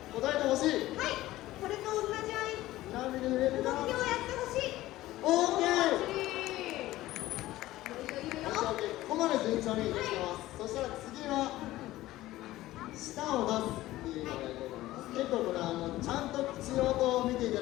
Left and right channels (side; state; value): right; quieter; 16.3 dB